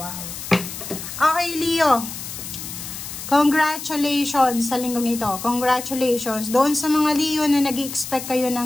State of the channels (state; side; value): noise; left; hiss, 9 dB below the sound